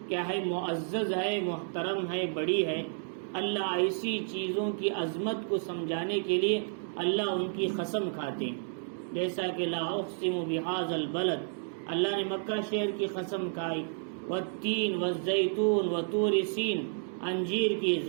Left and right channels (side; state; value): left; silent; digital silence